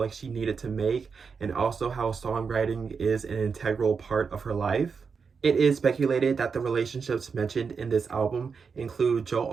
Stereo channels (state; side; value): quieter; left; 5.6 dB